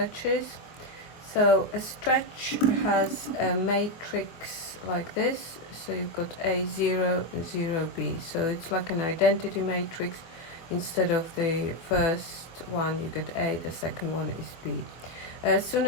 So a stretch has a matrix like this. So you've got A0 and 0B. So it's like an identity matrix. Instead of the first one you get A, the second one is B. As soon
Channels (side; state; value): right; late; 24 ms